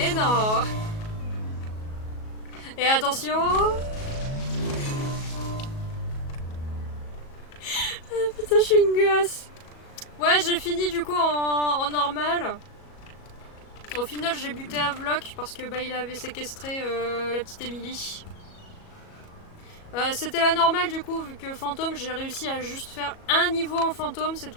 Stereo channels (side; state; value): right; late; 37 ms